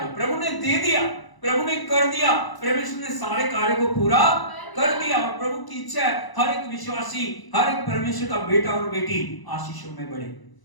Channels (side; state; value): right; late; 1.0 ms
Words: प्रभु ने दे दिया, प्रभु ने कर दिया, परमेश्वर ने सारे कार्य को पूरा कर दिया। और प्रभु की इच्छा है हर एक विश्वासी, हर एक परमेश्वर का बेटा और बेटी आशीषों में बढ़े,